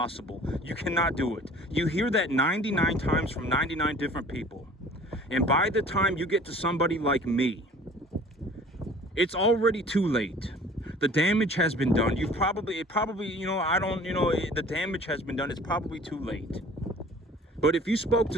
You cannot do it. You hear that 99 times from 99 different people. And by the time you get to somebody like me, it's already too late. The damage has been done. The damage has been done. It's probably too late. But if you spoke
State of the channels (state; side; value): normal; both; correlation 0.48